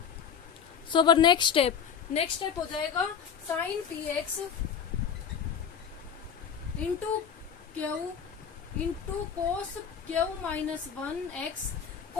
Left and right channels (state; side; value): quieter; right; 7.5 dB